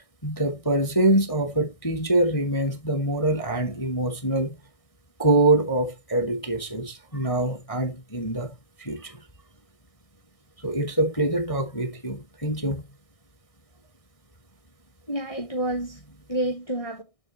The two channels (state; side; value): late; right; 1.6 ms